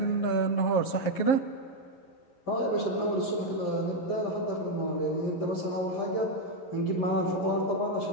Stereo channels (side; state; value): right; late; 11 ms